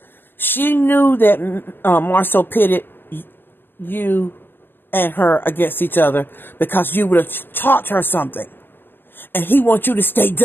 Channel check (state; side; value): late; right; 0.099 ms